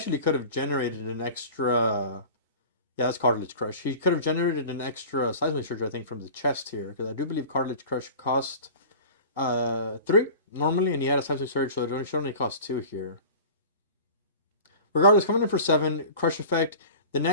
could have generated an extra... Yeah, that's Cartilage Crush. He could have generated an extra Seismic Surge, I think, from the chest here. Because I do believe Cartilage Crush cost 3 normally, and he had a Seismic Surge, so it should only cost 2 here. Regardless, coming in for 7, Crush Effect. The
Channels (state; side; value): inverted; both; correlation -0.39